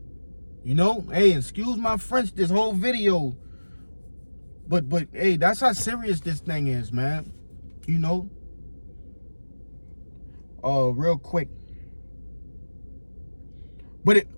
You know, hey, excuse my French, this whole video. But hey, that's how serious this thing is, man. You know. Real quick. But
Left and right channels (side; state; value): both; inverted; correlation -1.00